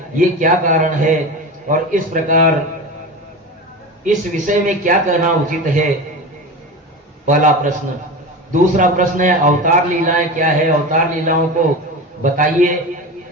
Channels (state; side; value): normal; both; correlation 0.27